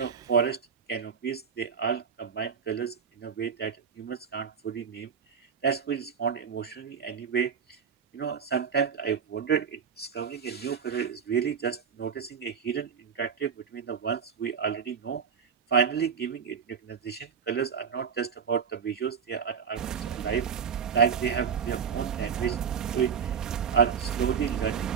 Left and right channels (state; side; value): quieter; left; 6.9 dB